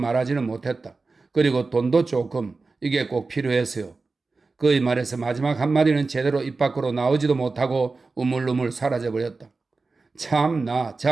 못했다. 그리고 돈도 조금, 이게 꼭 필요해서요. 그의 말에서 마지막 한마디는 제대로 입 밖으로 나오지도 못하고 우물우물 사라져버렸다. 참나,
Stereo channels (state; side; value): quieter; left; 3.9 dB